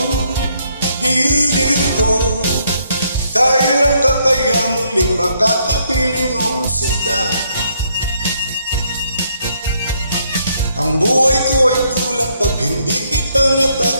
Giliw ko, kailan ka kaya muling makakapiling o sinta? Ang buhay ko ay kulang pag hindi kita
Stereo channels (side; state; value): both; inverted; correlation -0.71